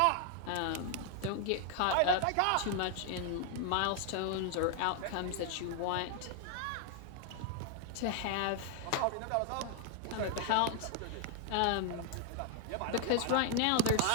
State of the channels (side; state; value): both; different; correlation 0.00